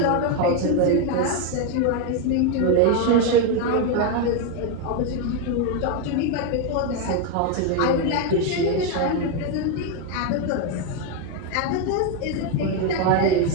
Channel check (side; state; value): both; different; correlation 0.02